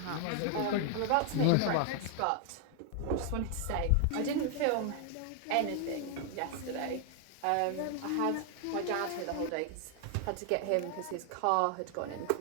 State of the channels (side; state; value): both; different; correlation 0.00